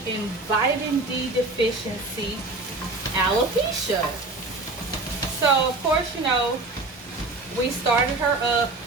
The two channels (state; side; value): quieter; left; 3.2 dB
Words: and vitamin D deficiency alopecia. So of course, you know, we started her up